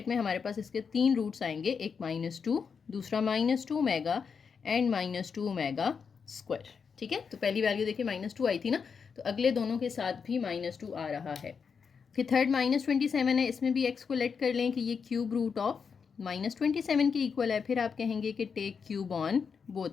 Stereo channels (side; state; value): right; quieter; 6.0 dB